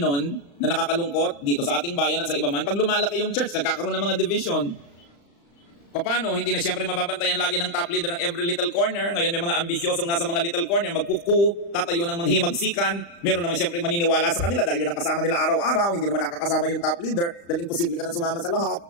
na nakakalungkot dito sa ating bayan at sa iba man, pag lumalaki yung church, nagkakaroon ng mga division. Paano? Hindi na siyempre mababantayan lagi ng top leader ng every little corner. Ngayon may mga ambisyosong nasa mga little corner, magkuku, tatayo ng manghimagsikan. Meron naman siyempre maniniwala sa kanila dahil yun ang kasama nila araw-araw. Hindi naman nakakasama yung top leader dahil imposible ka nang sumama sa lahat.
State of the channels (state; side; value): late; right; 35 ms